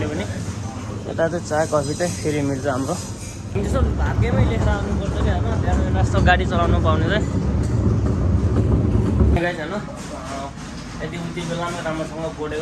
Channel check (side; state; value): both; identical; correlation 1.00